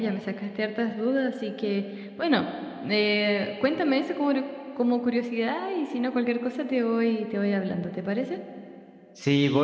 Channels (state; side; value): identical; both; correlation 1.00